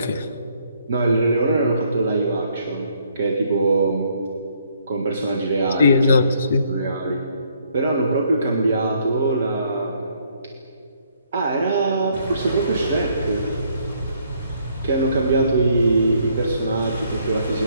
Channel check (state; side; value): inverted; both; correlation -0.68